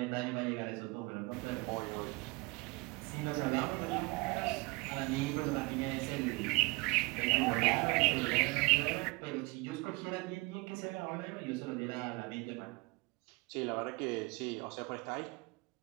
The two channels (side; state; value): left; quieter; 26.1 dB